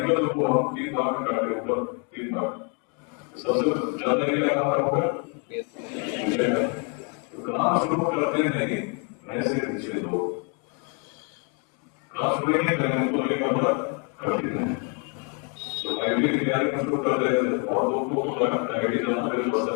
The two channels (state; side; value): quieter; right; 37.2 dB